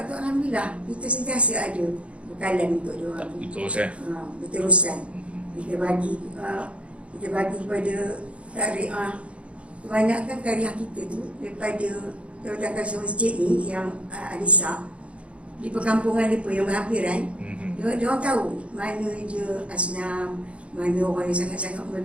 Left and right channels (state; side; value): late; left; 0.061 ms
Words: tu, alhamdulillah kita sentiasa ada bekalan untuk diorang. Berterusan. Kita bagi kepada tariah. Kebanyakan tariah kita tu daripada Jawatan Masjid ni yang Anisa di perkampungan mereka yang berhampiran, dia orang tahu mana dia asnam, mana orang yang sangat-sangat